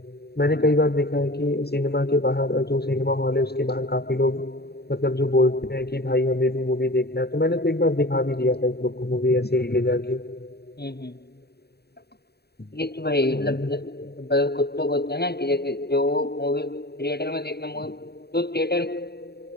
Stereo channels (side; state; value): right; late; 0.47 ms